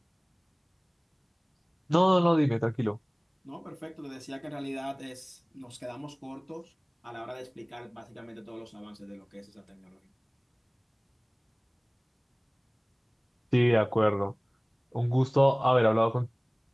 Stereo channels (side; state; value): both; identical; correlation 1.00